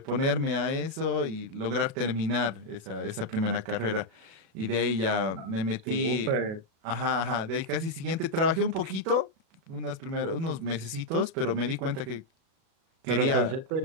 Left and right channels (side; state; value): left; late; 37 ms